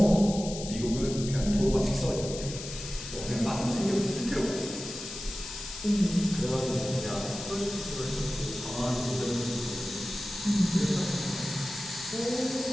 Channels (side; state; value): left; noise; hiss, 10 dB below the sound